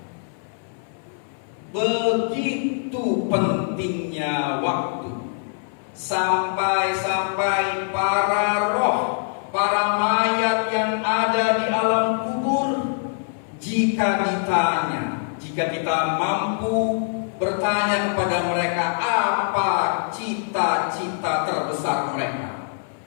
Begitu pentingnya waktu, sampai-sampai para roh, para mayat yang ada di alam kubur, jika jika kita mampu bertanya kepada mereka apa cita-cita terbesar mereka.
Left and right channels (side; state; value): right; silent; 59 dB below the other